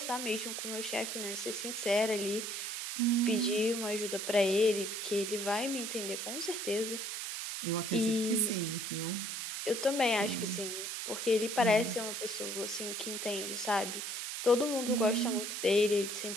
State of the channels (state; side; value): noise; right; hiss, 4 dB below the sound